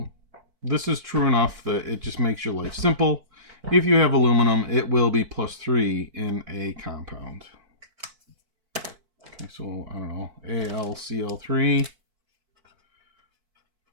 this is true enough that it just makes your life simple. If you have aluminum, it will be +3 in a compound. Okay, so I don't know, AlCl3.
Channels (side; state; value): left; late; 4.5 ms